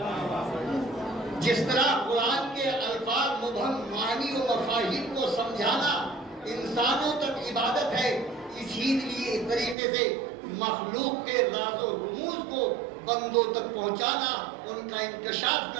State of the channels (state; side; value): drops out; left; at 9.8 s